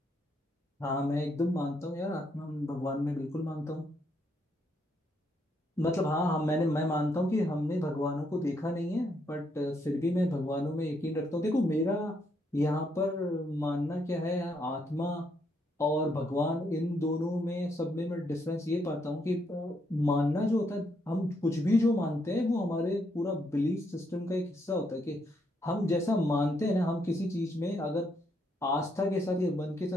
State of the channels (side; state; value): both; normal; correlation 0.75